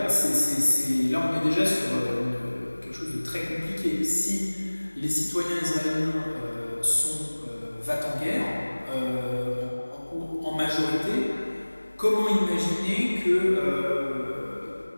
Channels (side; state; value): both; inverted; correlation -1.00